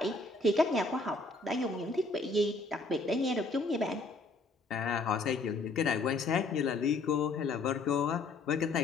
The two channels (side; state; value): right; quieter; 3.5 dB